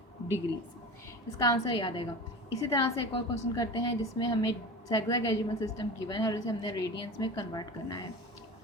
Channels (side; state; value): both; normal; correlation 0.32